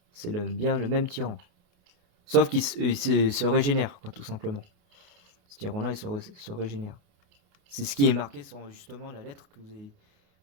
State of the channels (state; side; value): late; left; 28 ms